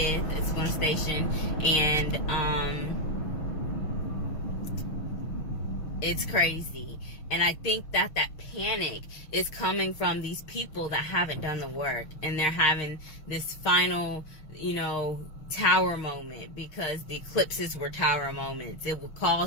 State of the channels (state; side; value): late; right; 6.5 ms